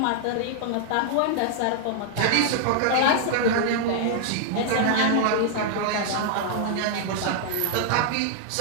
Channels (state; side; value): different; both; correlation 0.00